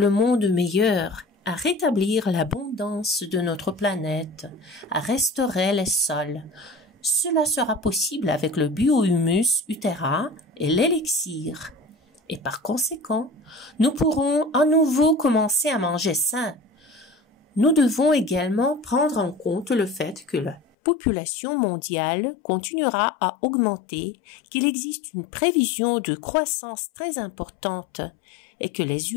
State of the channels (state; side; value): drops out; right; at 20.6 s